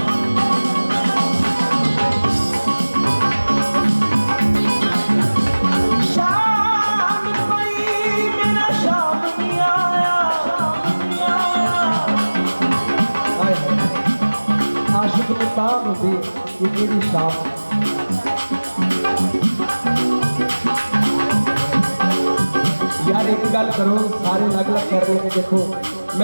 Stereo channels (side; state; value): both; inverted; correlation -1.00